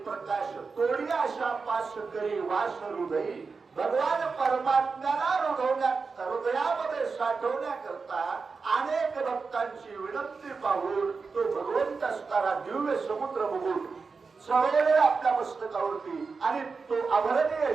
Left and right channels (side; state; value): left; quieter; 4.7 dB